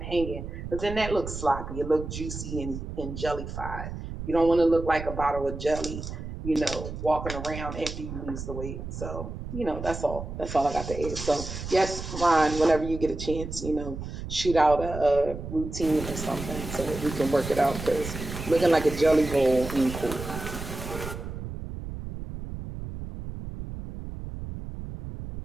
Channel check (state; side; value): noise; right; rumble, 8 dB below the sound